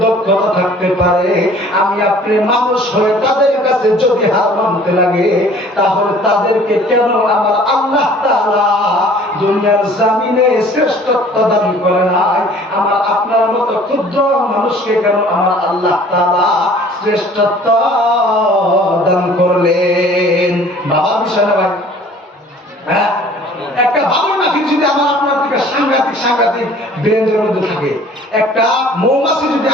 দক্ষতা থাকতে পারে, আমি আপনি মানুষ হয়ে তাদের কাছে যদি হার মানতে লাগে, তাহলে তাদেরকে কেন আমার আল্লাহ তাআলা দুনিয়ার জমিনে শ্রেষ্ঠত্ব দান করে নাই? আমার আপনার মতো ক্ষুদ্র মানুষকে কেন আমার আল্লাহ তাআলা শ্রেষ্ঠত্ব দান করলেন? বাবা বিষয় না ভাই? হ্যাঁ, একটা বাবুই পাখি যদি আমার আপনার থেকে সাংঘাতিক ব্রেঞ্জের মধ্যে থাকে, একটা মৌমাছি যদি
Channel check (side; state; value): both; normal; correlation 0.51